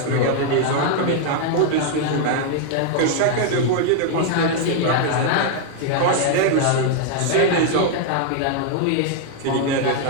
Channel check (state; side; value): different; both; correlation 0.00